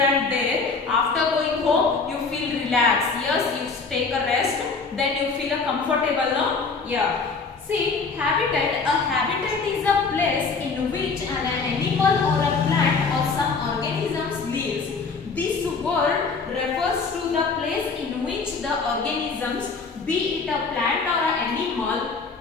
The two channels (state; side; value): quieter; right; 4.6 dB